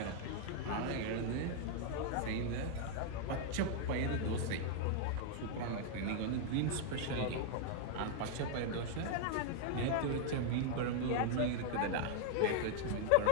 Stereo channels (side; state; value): both; different; correlation -0.01